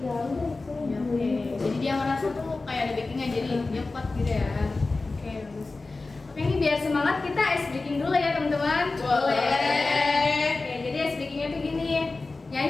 ya udah itu Ya, oke. Jadi dia ngerasa tuh kayak ada backingan, jadi dia kuat gitu ya. Oke, bagus. Oke, ini biar semangat kita ice breaking dulu ya teman-teman. Boleh. Oke, jadi ice breakingnya tuh gini,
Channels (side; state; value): right; quieter; 3.5 dB